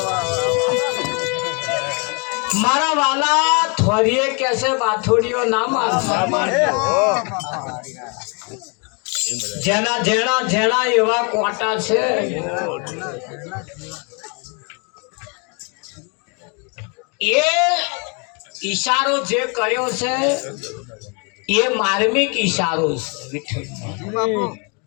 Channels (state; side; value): quieter; right; 34.3 dB